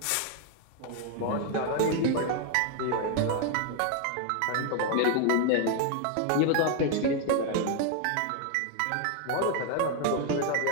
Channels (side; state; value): both; different; correlation 0.00